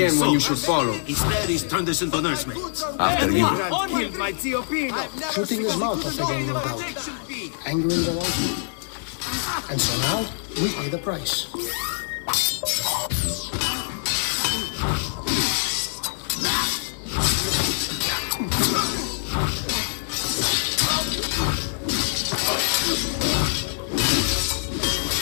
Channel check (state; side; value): silent; right; digital silence